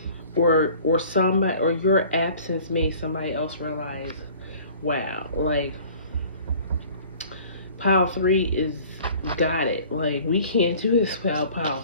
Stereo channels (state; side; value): inverted; both; correlation -0.49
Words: or somebody, or your absence made somebody else realize, wow, like pile three is got it. Like, we can't do this without pile